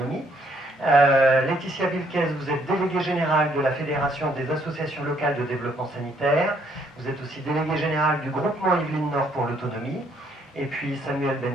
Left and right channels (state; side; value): normal; both; correlation 0.68